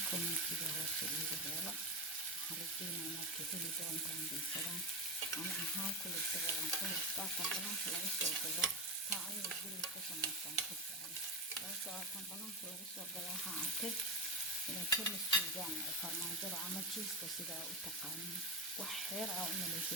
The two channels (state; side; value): normal; both; correlation 0.12